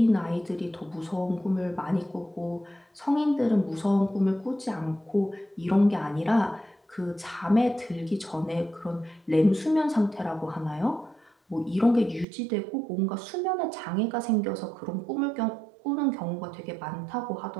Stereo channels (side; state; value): left; drops out; at 12.2 s